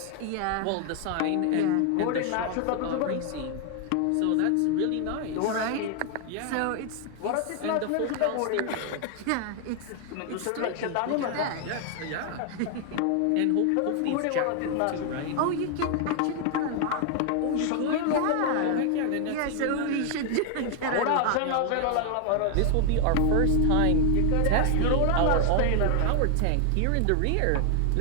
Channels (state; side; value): different; both; correlation 0.00